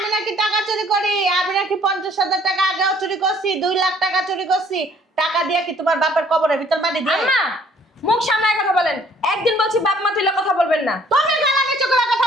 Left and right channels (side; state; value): both; normal; correlation 0.59